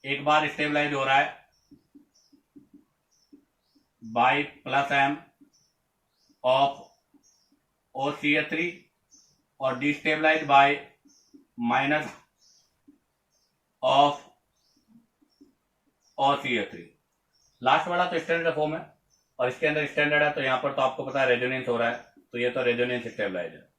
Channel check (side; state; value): both; identical; correlation 1.00